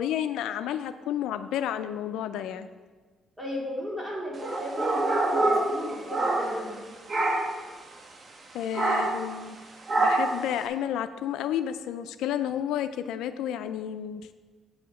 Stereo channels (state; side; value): normal; both; correlation 0.66